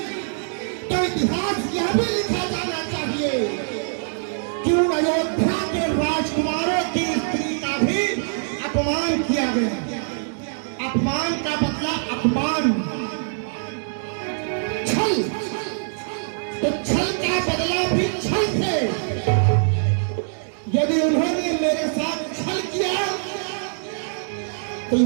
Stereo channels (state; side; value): silent; left; digital silence